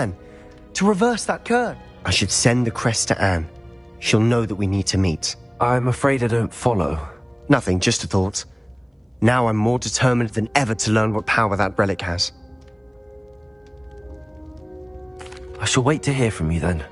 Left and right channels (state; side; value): identical; both; correlation 1.00